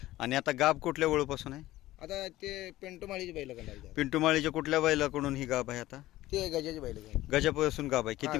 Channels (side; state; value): right; quieter; 16.2 dB